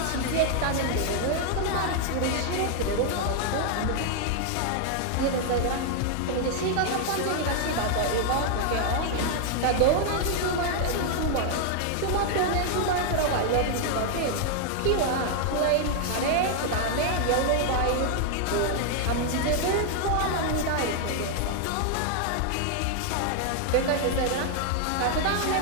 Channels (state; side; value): different; both; correlation 0.00